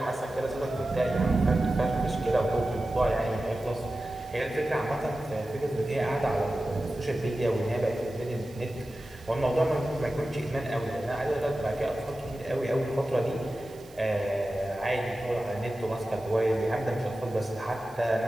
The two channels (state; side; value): noise; right; hiss, 26 dB below the sound